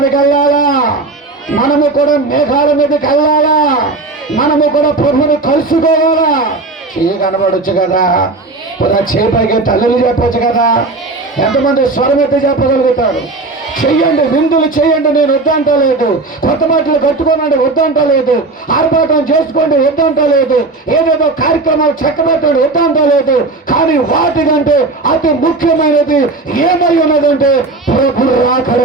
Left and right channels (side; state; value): left; quieter; 3.4 dB